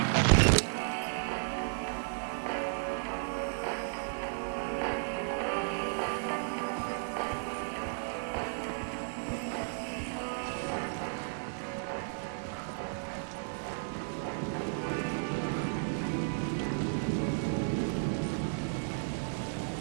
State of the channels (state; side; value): silent; left; digital silence